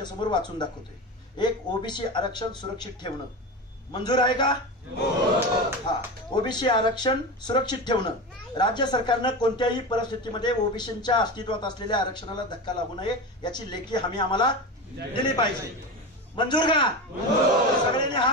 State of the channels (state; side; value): normal; both; correlation 0.24